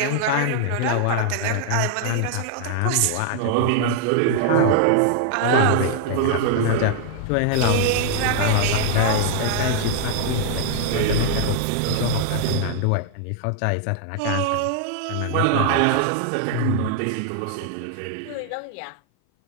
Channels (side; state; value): both; different; correlation 0.00